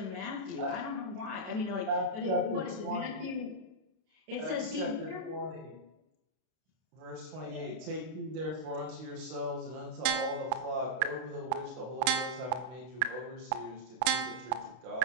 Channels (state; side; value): late; left; 32 ms